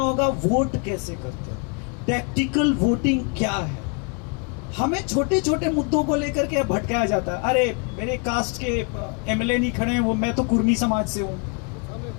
वोट कैसे करते हैं, टैक्टिकल वोटिंग क्या है। हमें छोटे छोटे मुद्दों को लेकर के भटकाया जाता है। अरे मेरे कास्ट के एमएलए नहीं खड़े हैं, वो मैं तो कुर्मी समाज से हूं।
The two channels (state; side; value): quieter; right; 35.5 dB